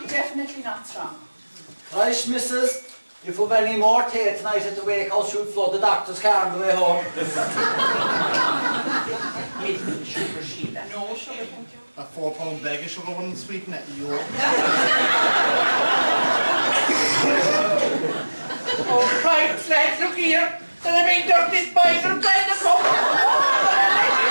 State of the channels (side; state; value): both; inverted; correlation -1.00